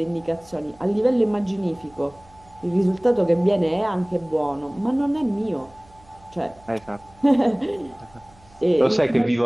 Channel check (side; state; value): right; noise; hum, 28 dB below the sound